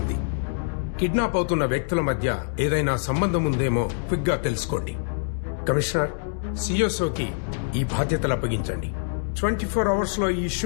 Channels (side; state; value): right; silent; digital silence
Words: కిడ్నాప్ అవుతున్న వ్యక్తుల మధ్య ఏదైనా సంబంధం ఉందేమో క్విక్ గా తెలుసుకోండి. కమిషనర్, సిఎస్ఓకి ఈ బాధ్యతలు అప్పగించండి. 24 అవర్స్ లో ఈ